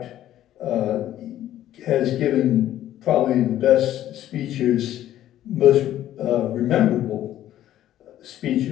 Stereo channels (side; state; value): right; quieter; 12.6 dB